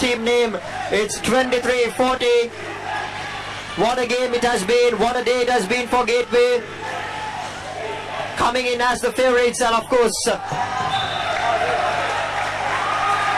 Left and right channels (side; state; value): both; identical; correlation 1.00